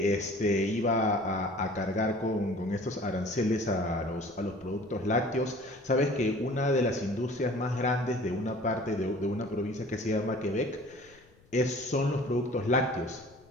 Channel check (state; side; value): noise; left; rumble, 29 dB below the sound